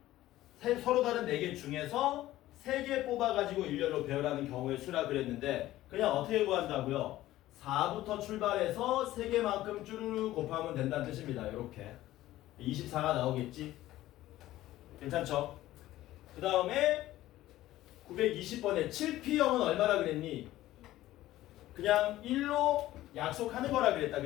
서로 다른 4개 중에서 3개 뽑아가지고 일렬로 배열하는 경우의 수라 그랬는데, 그냥 어떻게 구한다고요? 4부터 출발해서 3개만큼 쭈르르 곱하면 된다는 뜻입니다. 이렇게 24가 나오겠지? 괜찮죠? 그 다음에 920번에 7P형은 얼마라 그랬니? 그냥 1로 약속하는 거라 그랬다.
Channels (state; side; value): quieter; right; 15.3 dB